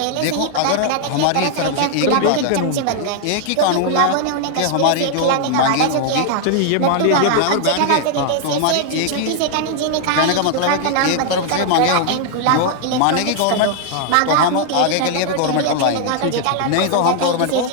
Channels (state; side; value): different; both; correlation 0.00